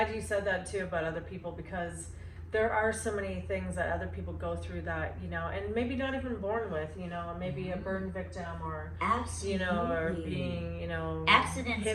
you said that too about other people, because there are so many things that other people go through that, you know, and maybe not even born with, you know, maybe a burn victim, or Absolutely. you know, or being, you know, accidents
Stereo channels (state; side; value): identical; both; correlation 1.00